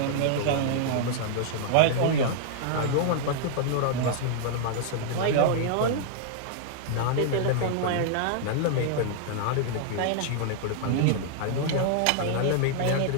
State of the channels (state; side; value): different; both; correlation -0.01